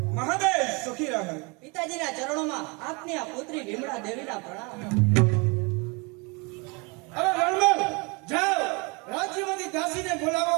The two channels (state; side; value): quieter; left; 29.6 dB